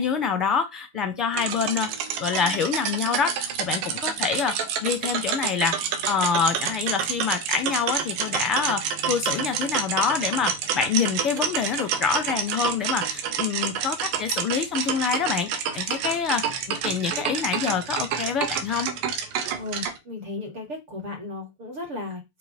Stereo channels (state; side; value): late; left; 6.8 ms